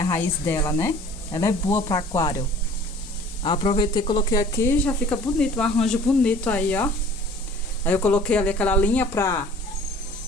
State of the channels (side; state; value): both; normal; correlation 0.49